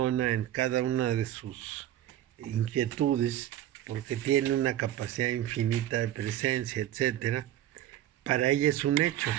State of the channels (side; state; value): left; quieter; 12.6 dB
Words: en cada una de sus inquietudes, porque tiene una capacidad infinita de presencia, etc. Para ella es un hecho.